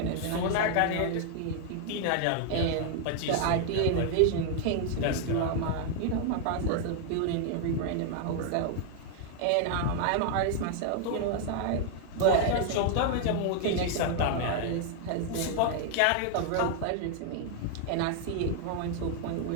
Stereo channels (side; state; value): both; different; correlation 0.00